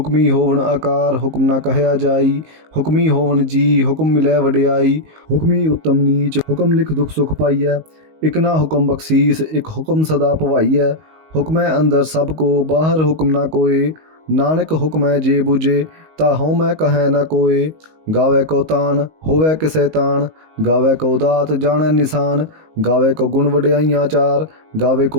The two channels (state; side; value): late; left; 19 ms